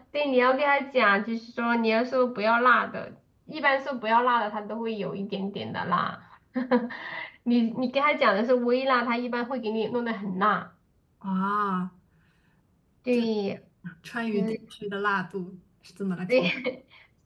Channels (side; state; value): both; identical; correlation 1.00